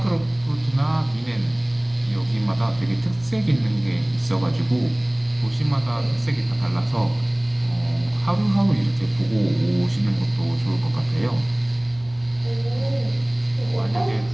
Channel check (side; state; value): left; noise; rumble, 28 dB below the sound